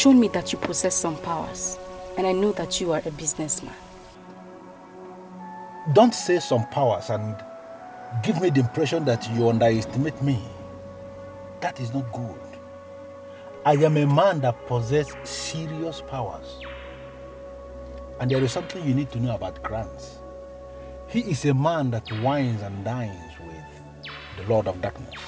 me that you possess some powers. And I know that you are a businessman. Don't say some powers and give me the impression that you underestimate me. That is not good. I am a man that possesses serious powers. And there is something you need to know about Grants. He is a man that wines and dines with the Lord of Darkness.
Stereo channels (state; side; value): identical; both; correlation 1.00